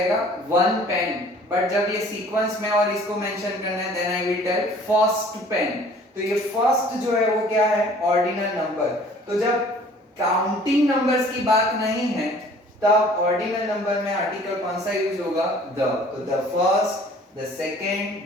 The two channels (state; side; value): normal; both; correlation 0.52